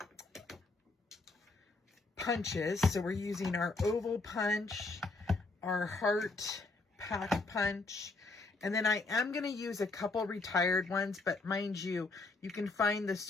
punches. So we're using our oval punch, our heart pack punch, and then I am going to use a couple retired ones, but mind you, you can find the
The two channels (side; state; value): right; quieter; 3.5 dB